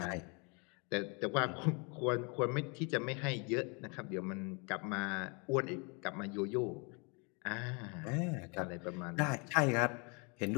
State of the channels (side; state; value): right; quieter; 32.5 dB